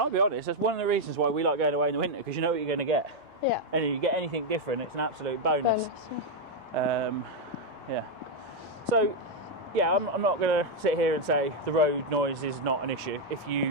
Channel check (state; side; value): normal; both; correlation 0.01